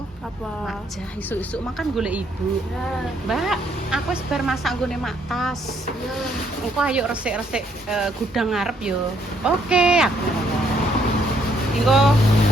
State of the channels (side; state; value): both; normal; correlation 0.69